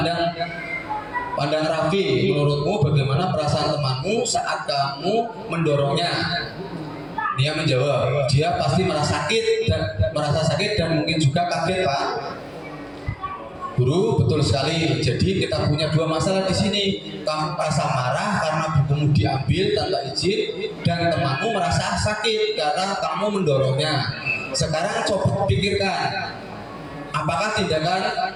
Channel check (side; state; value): both; identical; correlation 1.00